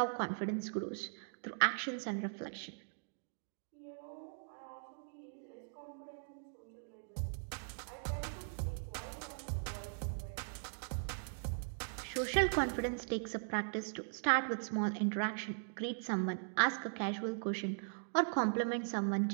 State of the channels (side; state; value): left; silent; digital silence